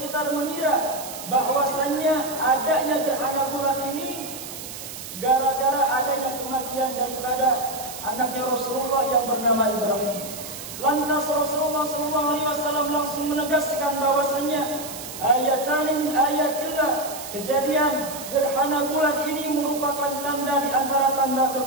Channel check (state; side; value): noise; right; hiss, 11 dB below the sound